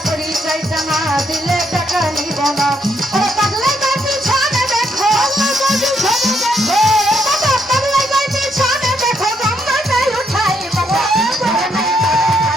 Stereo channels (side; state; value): both; normal; correlation 0.75